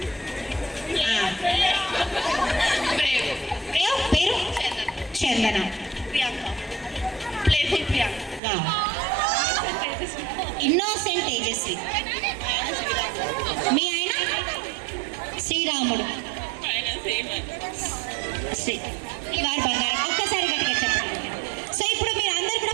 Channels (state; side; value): drops out; left; at 8.4 s